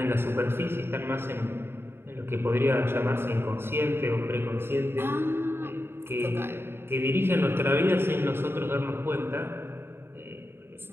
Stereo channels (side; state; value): left; late; 0.11 ms